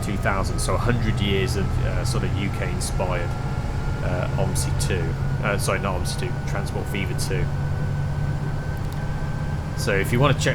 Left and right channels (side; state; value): both; identical; correlation 1.00